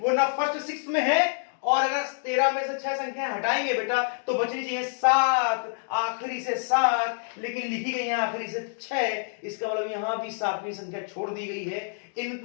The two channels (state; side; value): silent; right; digital silence